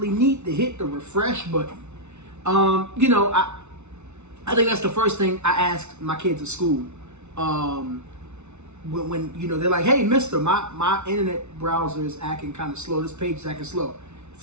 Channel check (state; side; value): late; left; 0.82 ms